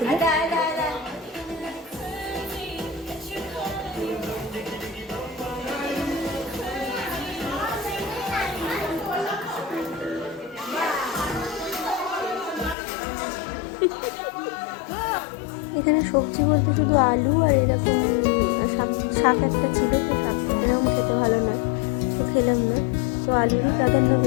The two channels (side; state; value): right; drops out; at 12.8 s